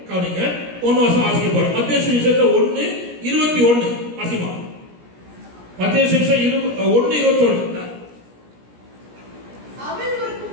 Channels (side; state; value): left; late; 17 ms